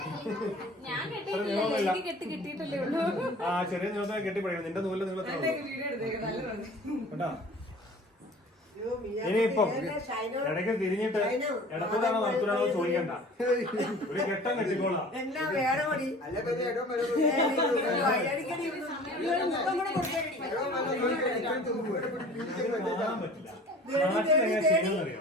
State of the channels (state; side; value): normal; both; correlation 0.45